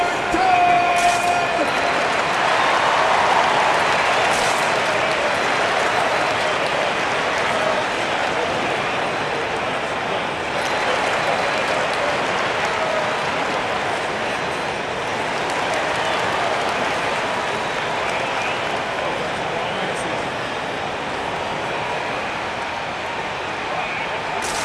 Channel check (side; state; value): both; identical; correlation 1.00